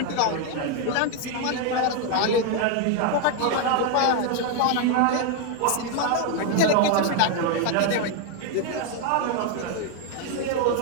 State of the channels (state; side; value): different; both; correlation 0.01